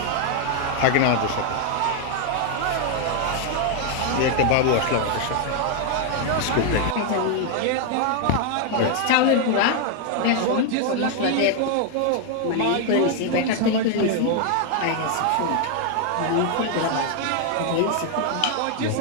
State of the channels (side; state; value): both; different; correlation 0.00